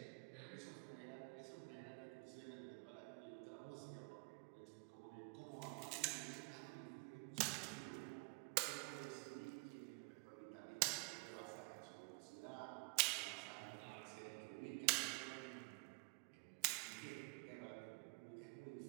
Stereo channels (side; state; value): left; quieter; 32.7 dB